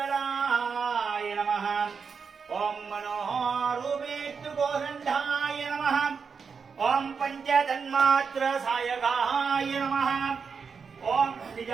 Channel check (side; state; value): left; quieter; 5.7 dB